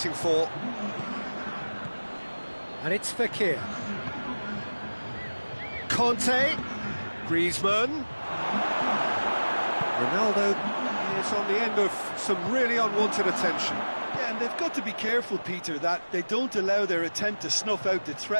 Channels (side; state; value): both; inverted; correlation -1.00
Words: for. And it's Fekir. Conte. Griezmann. Ronaldo is on the end of some really unwanted attention. Yeah, and they've got to be careful, Peter, that they don't allow their attempt to snuff out the